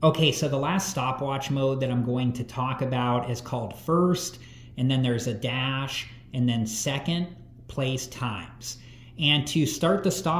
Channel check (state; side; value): identical; both; correlation 1.00